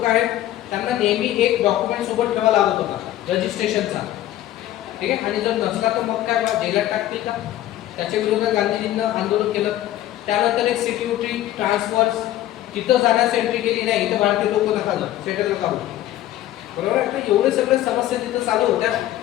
आहेत, त्यांना नेहमी एक डॉक्युमेंट सोबत ठेवा लागत होता, रजिस्ट्रेशनचा. ठीक आहे, आणि जर नसला तर मग काय जेलात टाकतील का. त्याच्या विरोधात गांधीजींना आंदोलन केलं. त्यानंतर एक सिक्युरिटी ट्रान्सफर्स, तिथं जाण्यास एंट्री केली नाही, इथं भारतीय लोक नका जाऊ, सेटल नका होऊ. बरोबर आहे. तर एवढे सगळे समस्या तिथं चालू होत्या,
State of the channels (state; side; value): quieter; right; 13.7 dB